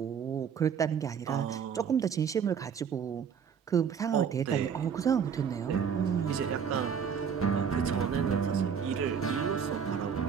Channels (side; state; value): left; quieter; 7.2 dB